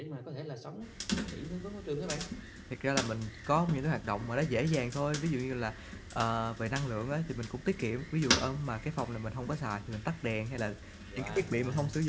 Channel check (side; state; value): both; identical; correlation 1.00